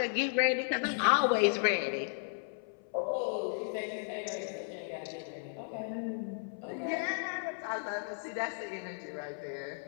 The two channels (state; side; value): silent; right; 55 dB below the other